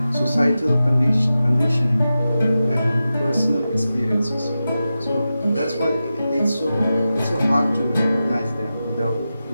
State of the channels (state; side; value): inverted; both; correlation -0.92